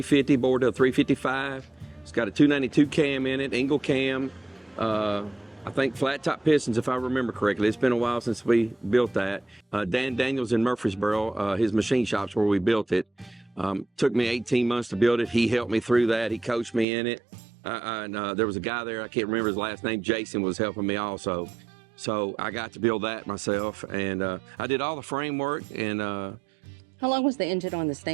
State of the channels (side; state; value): left; drops out; at 16.9 s